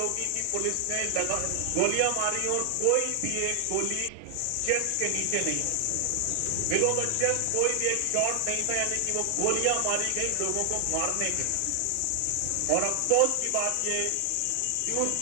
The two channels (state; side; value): different; both; correlation 0.00